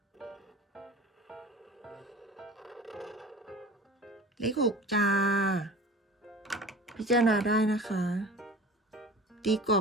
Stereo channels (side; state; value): both; normal; correlation 0.39